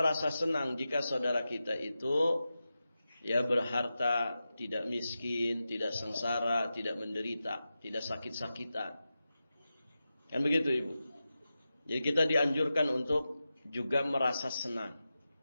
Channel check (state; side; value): inverted; both; correlation -0.92